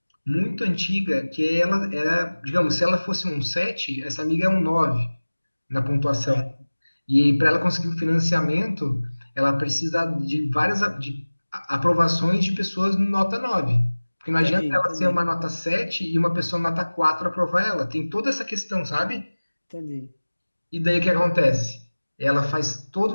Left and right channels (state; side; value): inverted; both; correlation -1.00